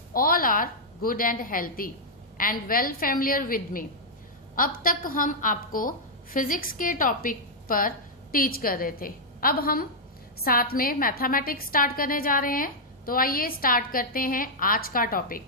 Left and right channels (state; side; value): normal; both; correlation -0.06